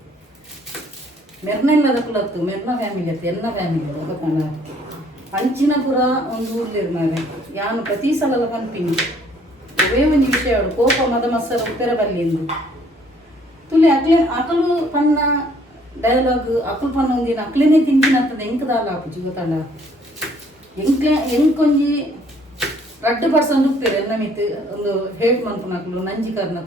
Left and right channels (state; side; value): normal; both; correlation 0.62